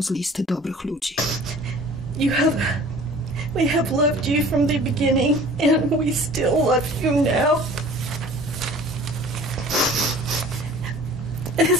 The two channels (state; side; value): normal; both; correlation 0.47